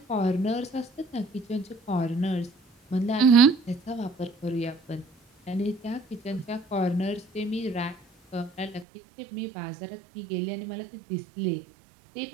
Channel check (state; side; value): drops out; left; at 8.8 s